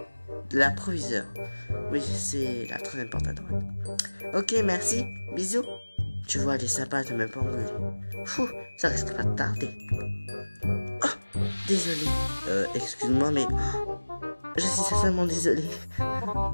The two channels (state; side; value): inverted; both; correlation -1.00